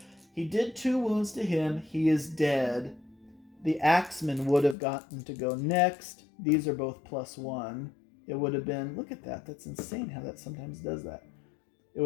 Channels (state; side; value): drops out; right; at 4.8 s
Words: he did 2 wounds to him. He is dead. The axeman would have gotten to go next. These are both +1. It would have been, look at that. That's insane how that sometimes does that. It